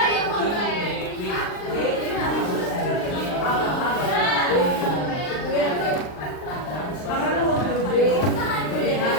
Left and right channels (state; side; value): late; right; 39 ms